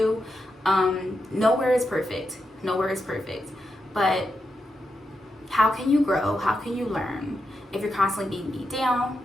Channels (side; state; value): both; normal; correlation 0.86